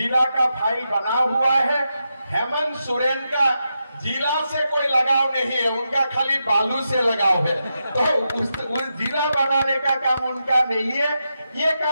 का फाइल बना हुआ है। हेमंत सोरेन का जिला से कोई लगाव नहीं है, उनका खाली बालू से लगाव है, तो उस जिला बनाने का काम उनका नहीं है, ये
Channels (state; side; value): inverted; both; correlation -0.87